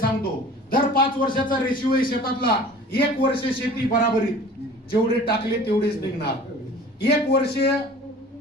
दर 5 वर्षाचा रेशिओ आहे शेतातला. 1 वर्ष शेती बराबरीत, जेवढे टाकले तेवढेच निघणार. 1 वर्ष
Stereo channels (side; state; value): both; normal; correlation 0.44